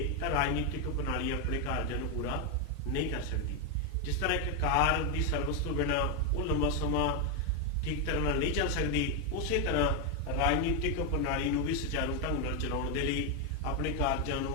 ਤਾਂ ਰਾਜਨੀਤਿਕ ਪ੍ਰਣਾਲੀ ਆਪਣੇ ਕਾਰਜਾਂ ਨੂੰ ਪੂਰਾ ਨਹੀਂ ਕਰ ਸਕਦੀ। ਜਿਸ ਤਰ੍ਹਾਂ ਇੱਕ ਕਾਰ ਦੀ ਸਰਵਿਸ ਤੋਂ ਬਿਨਾਂ ਉਹ ਲੰਬਾ ਸਮਾਂ ਠੀਕ ਤਰ੍ਹਾਂ ਨਾਲ ਨਹੀਂ ਚੱਲ ਸਕਦੀ, ਉਸੇ ਤਰ੍ਹਾਂ ਰਾਜਨੀਤਿਕ ਪ੍ਰਣਾਲੀ ਨੂੰ ਵੀ ਸੁਚਾਰੂ ਢੰਗ ਨਾਲ ਚਲਾਉਣ ਦੇ ਲਈ, ਆਪਣੇ ਕਾਰਜਾਂ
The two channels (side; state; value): both; normal; correlation 0.03